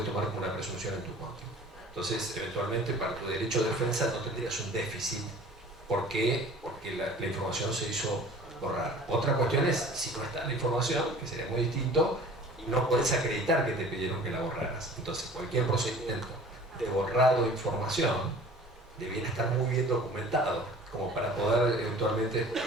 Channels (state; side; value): normal; both; correlation 0.45